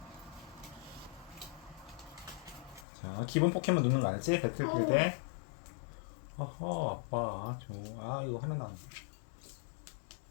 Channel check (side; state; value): right; drops out; at 2.9 s